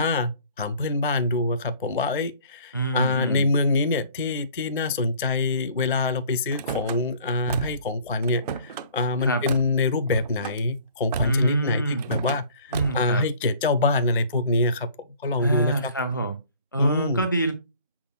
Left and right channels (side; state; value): both; inverted; correlation -0.52